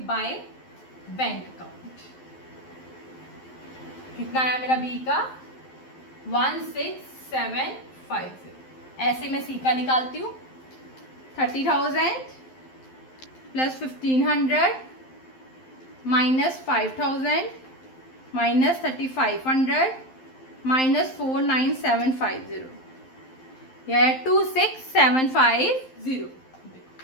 बाय बैंक अकाउंट। कितना आया मेरा बी का 16750। ऐसे मैं सी का निकालती हूँ 30,000 प्लस 1500 माइनस 5000 माइनस 3500 माइनस 49750, यह है 26750।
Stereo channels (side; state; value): right; late; 11 ms